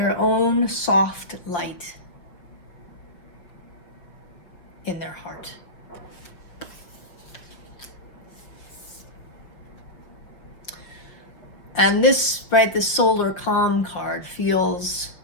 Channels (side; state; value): right; late; 5.8 ms